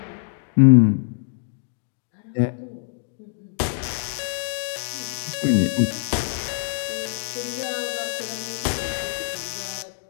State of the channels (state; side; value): silent; right; digital silence